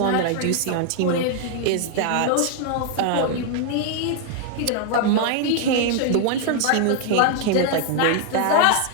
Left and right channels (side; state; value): both; different; correlation 0.00